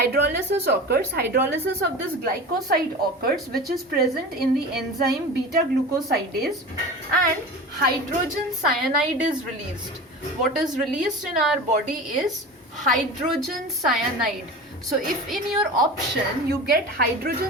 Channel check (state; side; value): normal; both; correlation 0.33